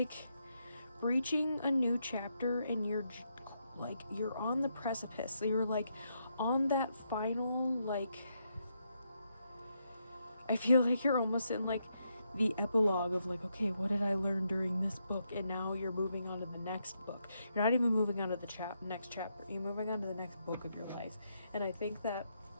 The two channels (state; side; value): inverted; both; correlation -0.80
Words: breaching a new chapter, and you're on the precipice. So you're on that final, I feel like you're almost in the epilogue of okay, what did I learn during this book? And now you're moving on to the next book. You're not even moving on to the next chapter. You're moving on to the next book of your life. And I think that